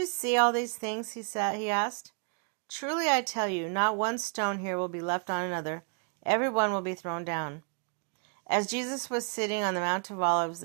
see all these things?" he asked. "Truly I tell you, not one stone here will be left on another. Every one will be thrown down." As Jesus was sitting on the Mount of Olives,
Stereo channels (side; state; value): left; quieter; 39.6 dB